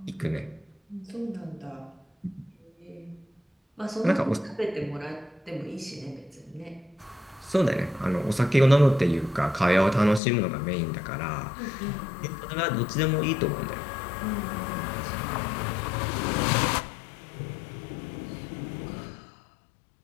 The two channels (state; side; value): drops out; right; at 10.2 s